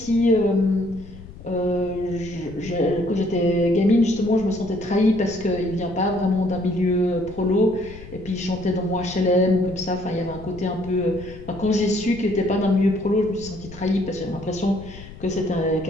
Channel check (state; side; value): noise; left; rumble, 16 dB below the sound